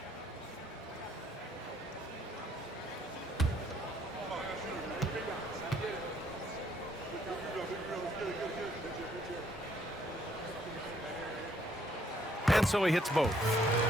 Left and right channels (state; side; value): normal; both; correlation 0.67